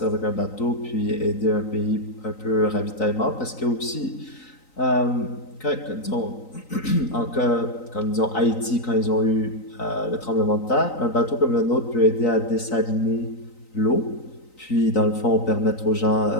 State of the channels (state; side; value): late; right; 3.9 ms